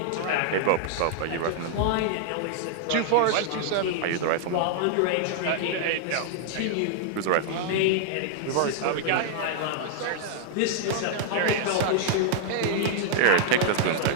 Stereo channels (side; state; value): both; different; correlation -0.01